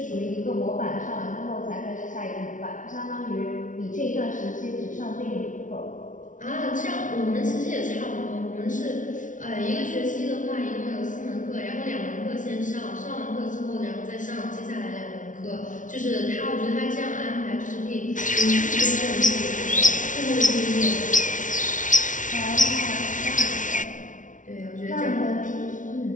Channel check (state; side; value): late; right; 0.37 ms